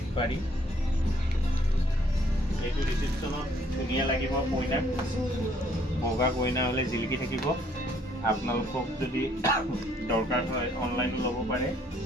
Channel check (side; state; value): both; normal; correlation 0.64